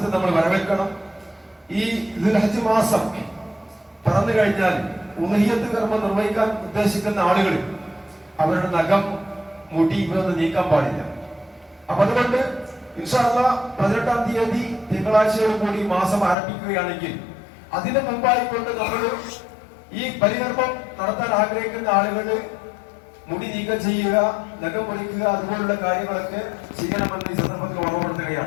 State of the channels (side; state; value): right; drops out; at 16.4 s